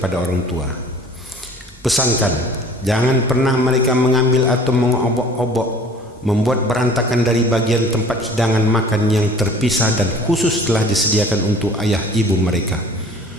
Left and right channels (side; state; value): both; normal; correlation 0.48